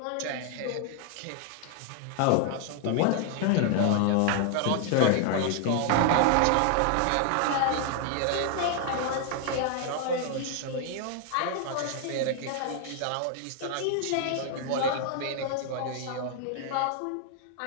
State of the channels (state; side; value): different; both; correlation 0.00